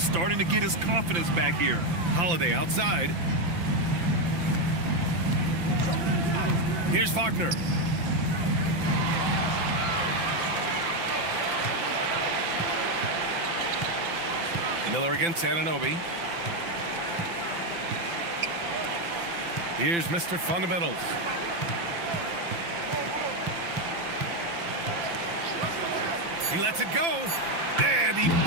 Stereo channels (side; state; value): left; late; 5.8 ms